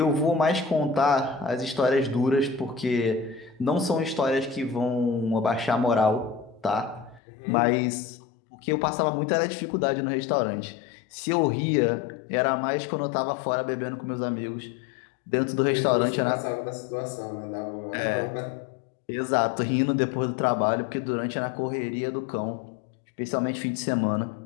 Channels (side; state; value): right; drops out; at 7.2 s